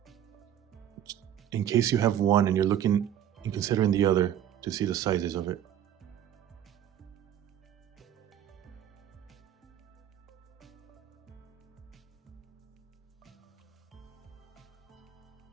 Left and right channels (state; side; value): quieter; left; 10.5 dB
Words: in case you have one and you're looking and considering the other to see the sizes of it.